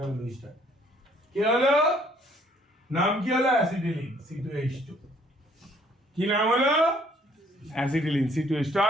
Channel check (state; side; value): normal; both; correlation 0.62